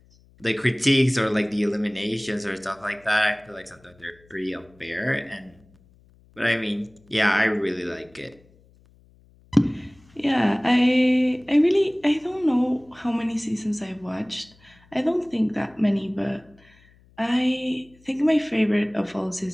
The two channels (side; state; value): left; noise; hum, 29 dB below the sound